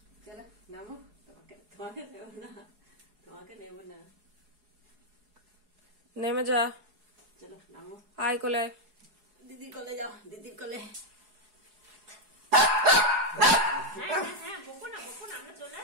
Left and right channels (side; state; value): left; late; 4.8 ms